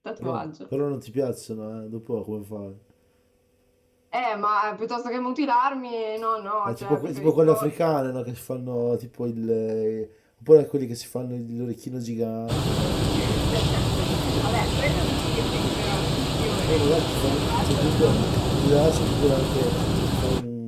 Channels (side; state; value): both; identical; correlation 1.00